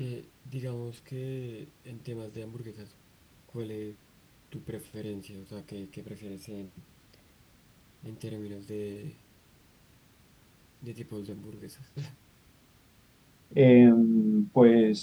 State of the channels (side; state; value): both; identical; correlation 1.00